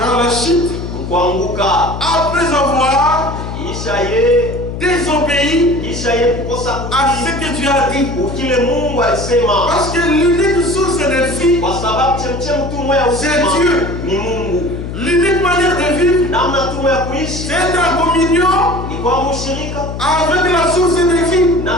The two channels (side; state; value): left; noise; hum, 7 dB below the sound